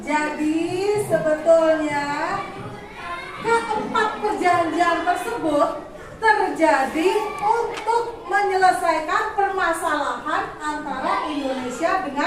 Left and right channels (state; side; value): identical; both; correlation 1.00